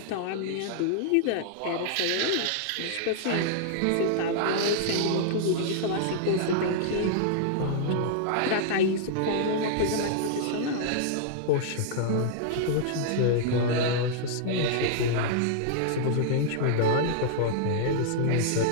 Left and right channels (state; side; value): different; both; correlation -0.01